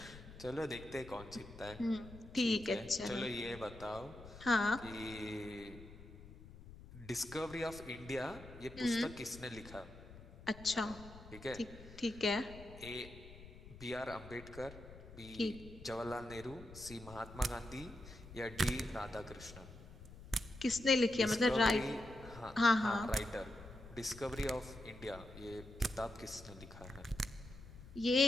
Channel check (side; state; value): left; noise; rumble, 16 dB below the sound